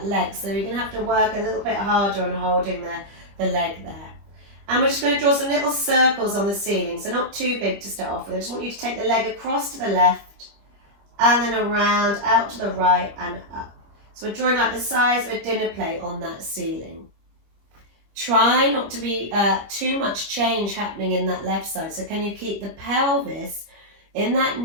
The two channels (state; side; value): late; left; 25 ms